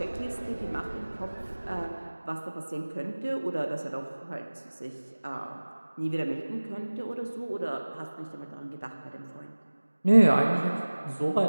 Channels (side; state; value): both; inverted; correlation -1.00